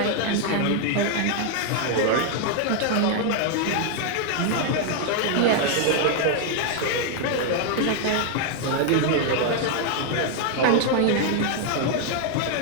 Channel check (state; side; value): different; both; correlation 0.00